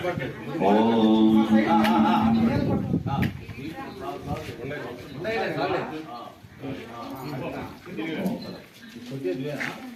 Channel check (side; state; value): both; identical; correlation 1.00